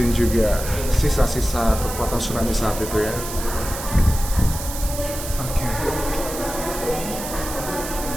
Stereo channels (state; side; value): noise; right; hiss, 8 dB below the sound